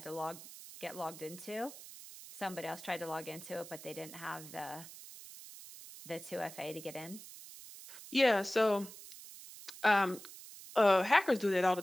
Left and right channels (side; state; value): right; noise; hiss, 15 dB below the sound